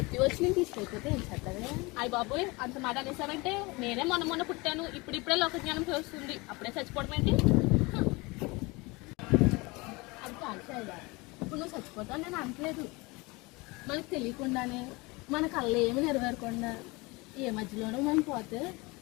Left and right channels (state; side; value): quieter; right; 25.0 dB